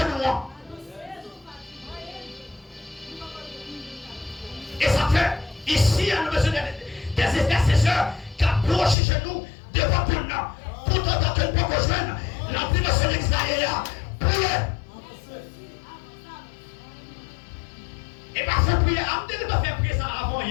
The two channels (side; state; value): right; drops out; at 9.0 s